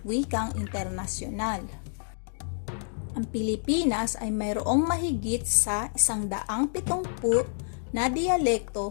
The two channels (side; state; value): right; silent; digital silence